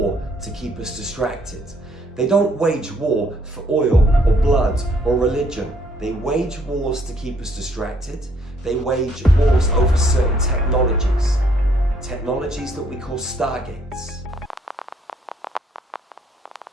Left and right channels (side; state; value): both; normal; correlation 0.67